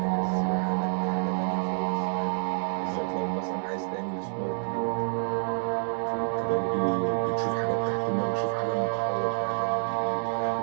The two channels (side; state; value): left; silent; digital silence